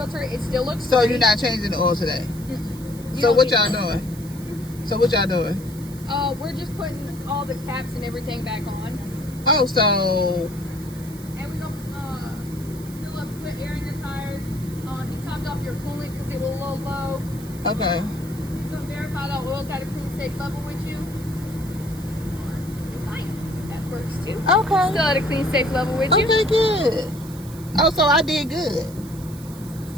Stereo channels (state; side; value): noise; right; hiss, 19 dB below the sound